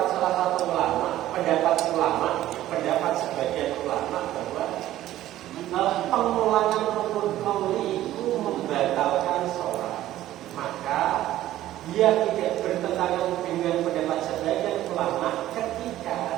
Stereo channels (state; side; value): quieter; left; 14.0 dB